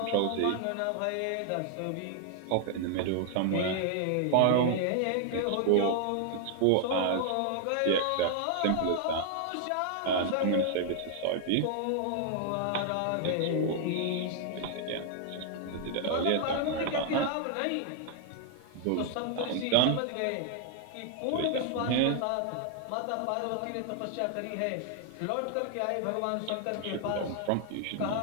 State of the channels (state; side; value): different; both; correlation 0.00